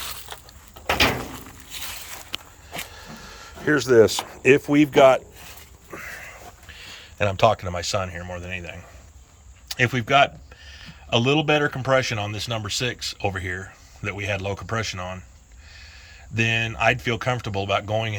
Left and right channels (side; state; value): both; identical; correlation 1.00